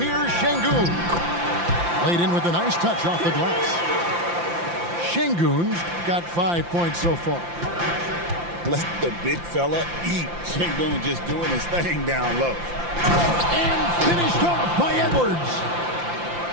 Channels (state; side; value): late; left; 5.8 ms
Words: Here's Şengün. Laid in with a nice touch off the glass. Şengün's got 5 points so far. Let the big fella eat. Şengün just doing his thing down low. And finished off by Edwards.